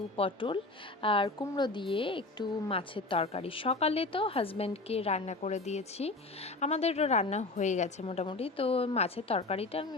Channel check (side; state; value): right; quieter; 3.2 dB